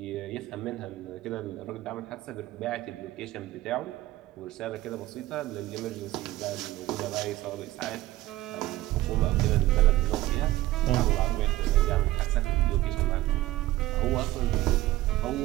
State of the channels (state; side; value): quieter; left; 16.6 dB